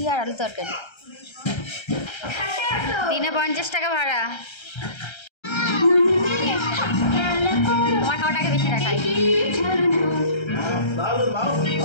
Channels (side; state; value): right; late; 1.3 ms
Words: আর আলু তরকারি। দিনে 50 টাকা ভাড়া। তোমার খাওয়াটাকে বেশি দেখাই।